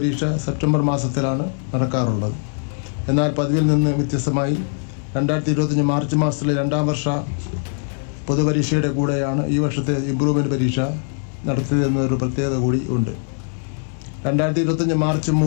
സെപ്റ്റംബർ മാസത്തിലാണ് നടക്കാറുള്ളത്. എന്നാൽ പതിവിൽ നിന്ന് വ്യത്യസ്തമായി 2025 മാർച്ച് മാസത്തിലെ 2ാം വർഷ പൊതുപരീക്ഷയുടെ കൂടെയാണ് ഈ വർഷത്തെ ഇംപ്രൂവ്മെൻ്റ് പരീക്ഷ നടത്തിയതെന്നൊരു പ്രത്യേകത കൂടി ഉണ്ട്. 2025 മാർച്ച്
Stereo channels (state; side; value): silent; right; digital silence